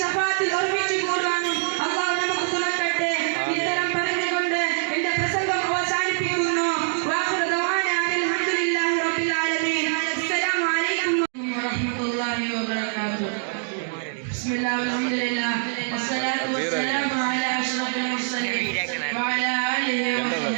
ശഫാത്തിൽ ഒരുമിച്ച് കൂടുവാനും അല്ലാഹു നമുക്ക് തുണക്കട്ടെ. ഇത്തരം പറഞ്ഞുകൊണ്ട് എന്റെ പ്രസംഗം അവസാനിപ്പിക്കുന്നു. വാഖിറു ദഅവാന അൽഹംദുലില്ലാഹി റബ്ബിൽ ആലമീൻ. അസ്സലാമു അലൈക്കും വറഹ്മത്തുള്ളാഹി വബറകാതുഹു. ബിസ്മില്ലാഹി വൽഹംദുലില്ലാഹ് വസ്സലാത്തു വസ്സലാമു അലാ അഷ്റഫിൽ മുർസലീൻ വഅലാ ആലിഹി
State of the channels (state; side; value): silent; left; digital silence